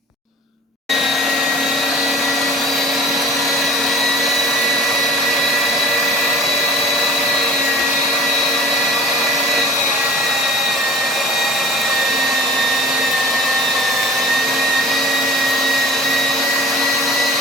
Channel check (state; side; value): normal; both; correlation 0.44